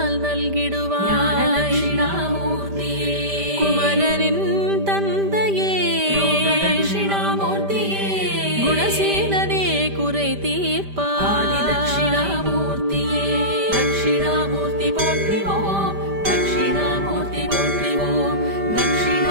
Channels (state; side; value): late; left; 5.1 ms